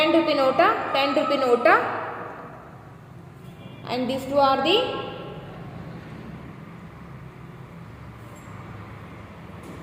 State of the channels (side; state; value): both; identical; correlation 1.00